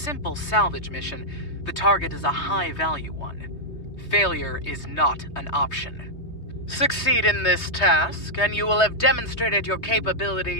salvage mission, the target is a high-value one. Failure is not an option. Succeed in this task, and you will have demonstrated your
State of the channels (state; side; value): late; right; 3.2 ms